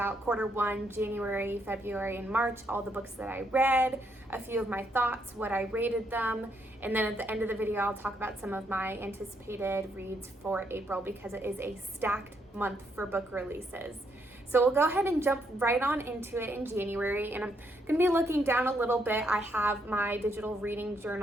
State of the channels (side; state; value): both; normal; correlation 0.75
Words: Q1, January, February, and March, all the books that I read, a few of my thoughts, what I rated them, and then at the end of the video I'll talk about some of my anticipated reads for April because it is a stacked month for book releases. So we'll go ahead and jump right on into it in January, and I'm going to be looking down a little bit. I have my digital reading